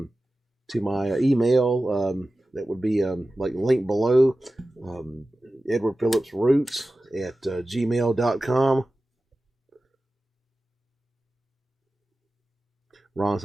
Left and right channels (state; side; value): normal; both; correlation 0.95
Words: my email. That would be like linked below. Edward Phillips Roots at gmail.com. Ron